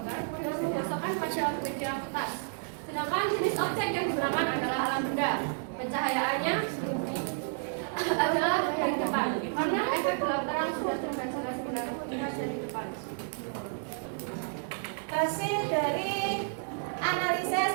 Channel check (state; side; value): silent; left; digital silence